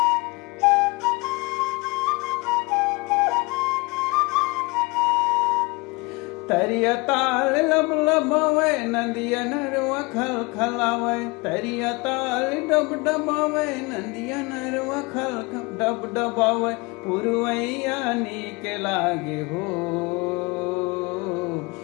तरिया ताल लब लबावे नदिया नरवा खल खलावे, तरिया ताल डब डबावे नदिया नरवा खल डब डबावे, पुरवैया नीक लागे हो,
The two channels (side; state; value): right; quieter; 25.9 dB